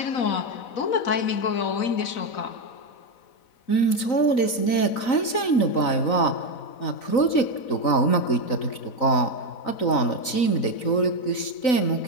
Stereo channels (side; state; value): right; late; 3.9 ms